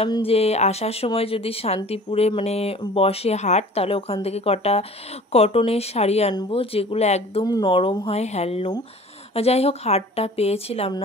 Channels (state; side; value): normal; both; correlation 0.45